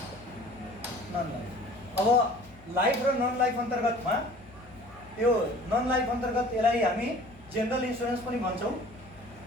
अब लाइफ र नन लाइफ अन्तर्गतमा यो नन लाइफ अन्तर्गत यसलाई हामी जेनरल इन्सुरेन्स पनि भन्छौँ,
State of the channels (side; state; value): left; noise; hum, 23 dB below the sound